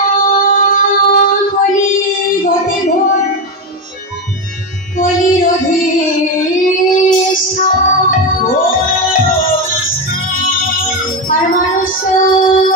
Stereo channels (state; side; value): normal; both; correlation 0.12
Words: গতে ঘোর কলির আর মানুষ